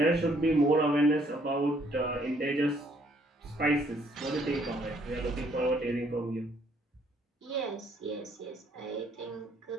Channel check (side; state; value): both; normal; correlation 0.66